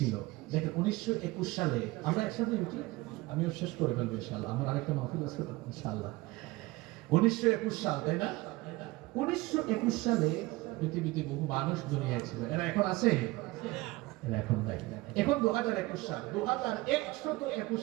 দেখেন 1921 সালে আমরা একসাথে উঠি, আমিও শেষ করে ফেলবো ইনশাআল্লাহ, আমার আরেকটা মাহফিল আছে ইনশাআল্লাহ। 1921 সাল, তাই না? 1921 সালে পৃথিবীতে বহু মানুষ দুনিয়ায় ছিল। এরা এখন আছে? এরা এখন নাই। এখন 2021 সাল, 2121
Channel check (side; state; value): left; quieter; 20.6 dB